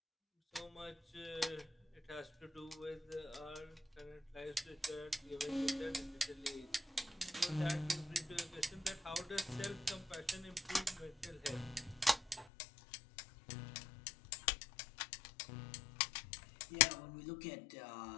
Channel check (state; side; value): drops out; right; at 12.5 s